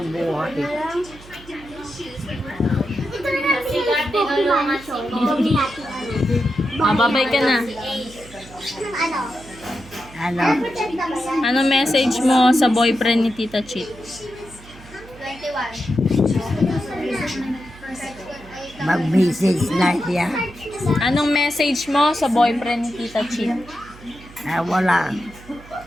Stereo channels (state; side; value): noise; right; hum, 20 dB below the sound